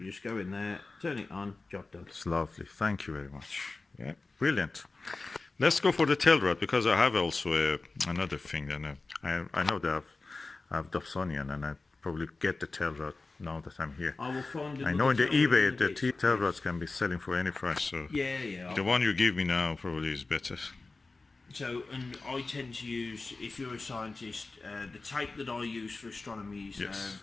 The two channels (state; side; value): quieter; right; 3.6 dB